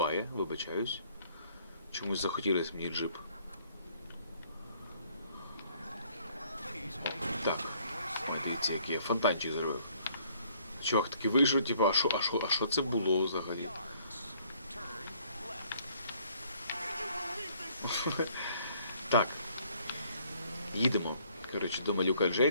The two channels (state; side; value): inverted; both; correlation -0.63